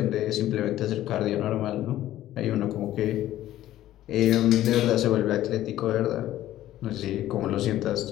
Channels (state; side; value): quieter; right; 13.7 dB